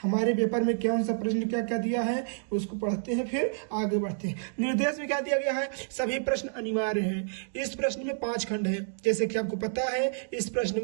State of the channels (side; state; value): left; silent; digital silence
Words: हमारे पेपर में कौन सा प्रश्न क्या क्या दिया है, उसको पढ़ते हैं फिर आगे बढ़ते हैं। निर्देश में क्या दिया गया है, सभी प्रश्न अनिवार्य हैं। इस प्रश्न में 5 खंड है। जैसे कि आपको पता है इस